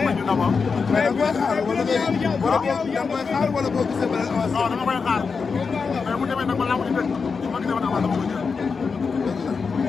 may ñu d'abord. mais da nga koy xaar wala ngay wala boo da nga koy xaar wala boo gisee beneen avance. non dama koy xaar mais bu demee nag ba lamb ji tëj ma gisee ba avance dama koy jël. dama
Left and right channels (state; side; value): quieter; right; 5.2 dB